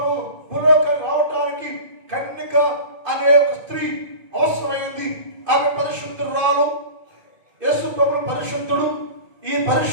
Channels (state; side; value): late; left; 2.5 ms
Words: భూలోకానికి రావటానికి కన్యక అనే ఒక స్త్రీ అవసరమైంది. ఆమె పరిశుద్ధురాలు, యేసు ప్రభు పరిశుద్ధుడు. ఈ